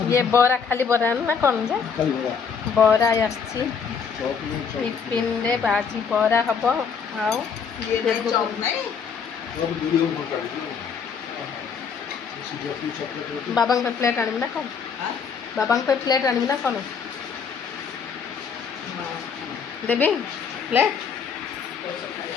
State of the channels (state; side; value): quieter; right; 6.3 dB